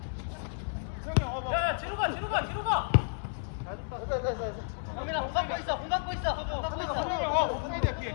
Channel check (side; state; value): right; silent; digital silence